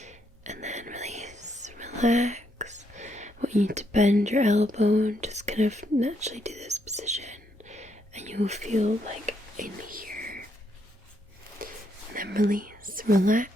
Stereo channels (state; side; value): normal; both; correlation 0.76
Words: And then release, relax. I want you to bend your elbow and just kind of naturally do this position. And you will feel like in here. And then release,